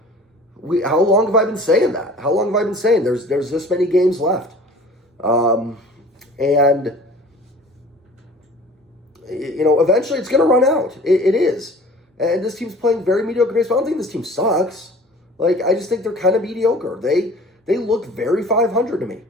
how long have I been saying that? How long have I been saying there's this many games left? And eventually it's going to run out. It is. And this team's playing very mediocre baseball. I don't think this team sucks. I just think they're kind of mediocre. They look very 500 to me.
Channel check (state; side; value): normal; both; correlation 0.46